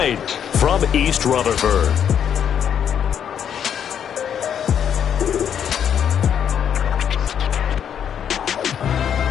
from East Rutherford.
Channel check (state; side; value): quieter; right; 8.7 dB